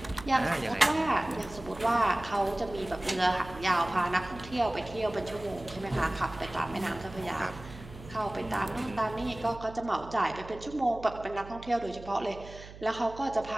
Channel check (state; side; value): noise; right; hum, 16 dB below the sound